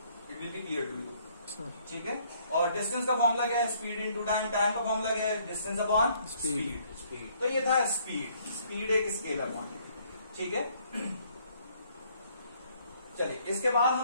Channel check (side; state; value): both; inverted; correlation -0.64